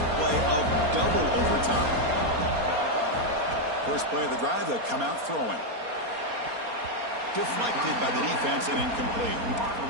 play of double overtime. First play of the drive, they'll come out throwing. Deflected by the defense and incomplete.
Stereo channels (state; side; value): late; left; 4.3 ms